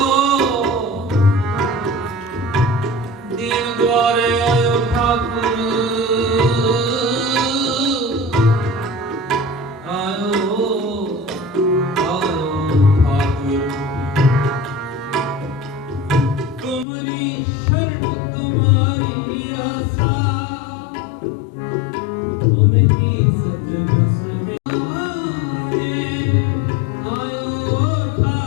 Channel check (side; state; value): right; drops out; at 16.9 s